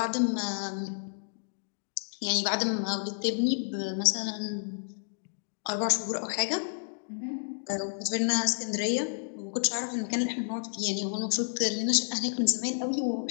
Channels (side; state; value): right; silent; digital silence